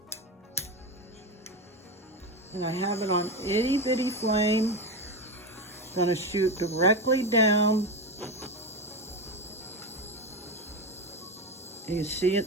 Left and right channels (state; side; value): normal; both; correlation 0.17